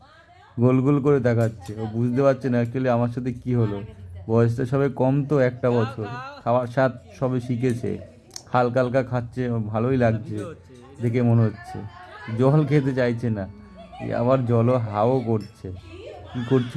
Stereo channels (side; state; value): both; identical; correlation 1.00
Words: গোল গোল করে তাকাচ্ছে। ও বুঝতে পারছে না অ্যাকচুয়ালি আমার সাথে কি হলো। বয়সটা সবে কম তো, 1 বছর, খাওয়ার স্বাদ সবে শিখেছে, হালকা হালকা খাচ্ছে, ওর ভালোই লাগছে দেখে মনে হচ্ছে। জল খেতে চাইছে না, আবার জলও হাও করছে। কি